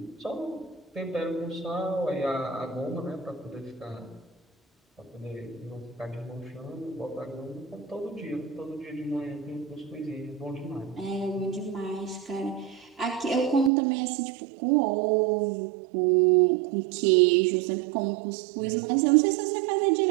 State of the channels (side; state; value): left; drops out; at 13.7 s